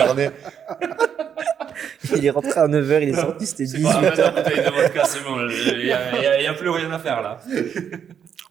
Il est rentré à 9h, il est sorti, c'était C'est pas 18h. la bouteille de vodka, c'est bon. Il y a plus rien à faire là.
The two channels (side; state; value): left; quieter; 8.1 dB